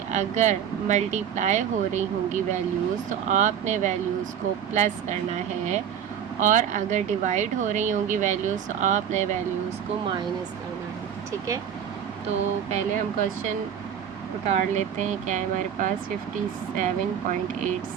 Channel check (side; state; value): left; quieter; 8.6 dB